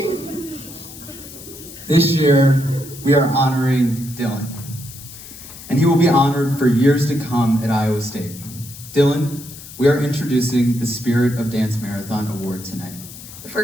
This year, we are honoring Dillyn, and he will be honored for years to come at Iowa State. Dillyn, we are introducing the Spirit of Dance Marathon Award tonight. The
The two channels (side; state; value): left; noise; hiss, 15 dB below the sound